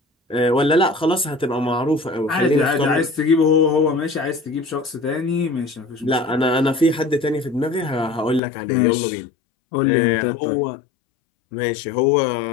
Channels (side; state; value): right; drops out; at 8.4 s